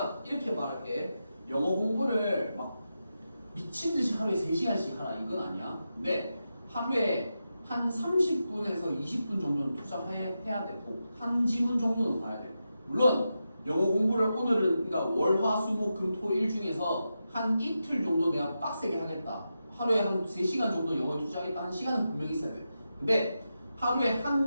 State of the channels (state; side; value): inverted; both; correlation -0.89